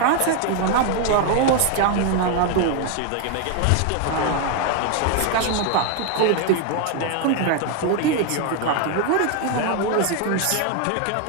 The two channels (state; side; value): different; both; correlation 0.01